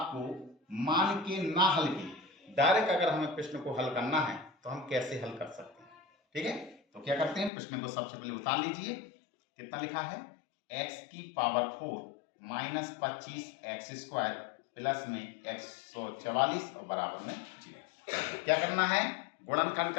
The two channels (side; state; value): right; drops out; at 7.5 s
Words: मान के ना हल की, डायरेक्ट अगर हमें प्रश्न को हल करना है तो हम कैसे हल कर सकते हैं। ठीक है, तो क्या करते हैं, प्रश्न को सबसे पहले उतार लीजिए। कितना लिखा है, x की power 4 minus 25 x square plus में 144 और बराबर में 0। क्या करना है, गुणनखंड